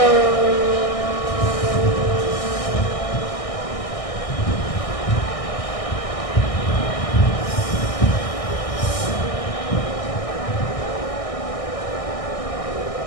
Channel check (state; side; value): late; right; 1.6 ms